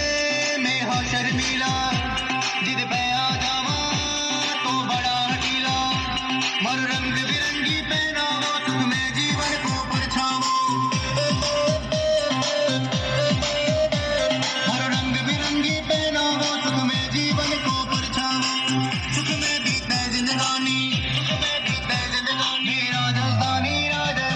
मैं हाँ शर्मीला, जिद पे आ जावा तो बड़ा हठीला। मर रंग बिरंगी पहनावो, सुख में जीवन को परछावो। हर रंग बिरंगी पहनावो, सुख में जीवन को परछावो। सुख में बीते जिंदगानी, सुख में बीते जिंदगानी। राजस्थानी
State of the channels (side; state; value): both; identical; correlation 1.00